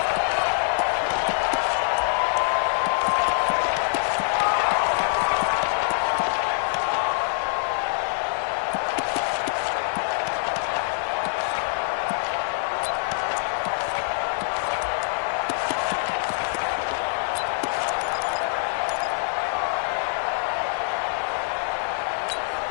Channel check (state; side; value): silent; right; 62 dB below the other